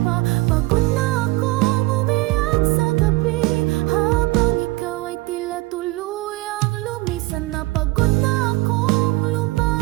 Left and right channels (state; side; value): quieter; left; 21.4 dB